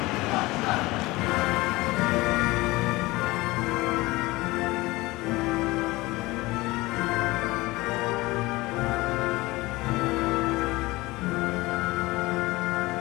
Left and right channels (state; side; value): quieter; right; 20.8 dB